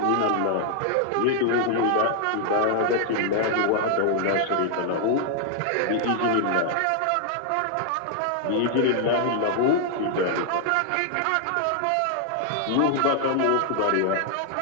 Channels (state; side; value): different; both; correlation 0.00